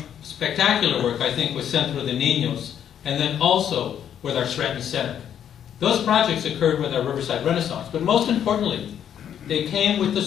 spectacular work, I think, with Centro de Niños, and then also with our Stratton Center. Those projects occurred with our Riverside Renaissance, but most importantly, they came with the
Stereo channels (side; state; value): right; quieter; 9.4 dB